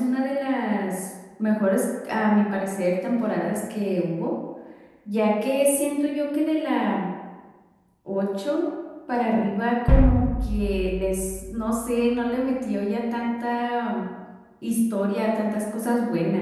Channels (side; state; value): both; identical; correlation 1.00